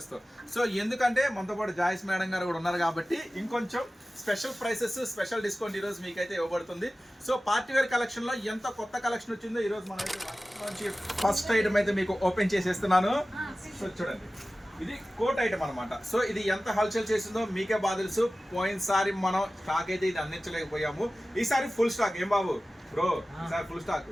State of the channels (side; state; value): both; normal; correlation 0.96